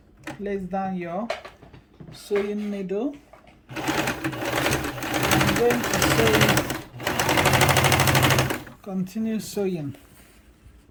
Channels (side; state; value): both; identical; correlation 1.00